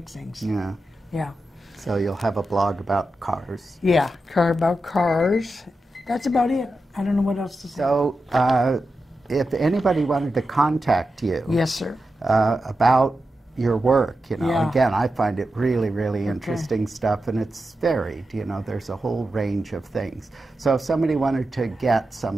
Yeah. Yeah. So you'll have a blog about cars. Yeah, about cars. That's about it. I don't know what else to say. So if anybody wanted to contact you, Yes, sir. About your work, Yeah. again, I find it really, really interesting stuff, and it's varied. There's a whole range of things. So if somebody wanted to get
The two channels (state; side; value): normal; both; correlation 0.90